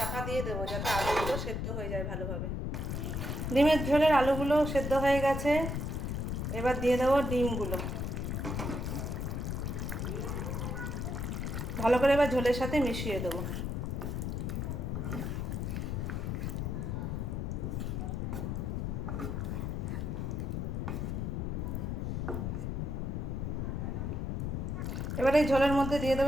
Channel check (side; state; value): left; noise; rumble, 2 dB below the sound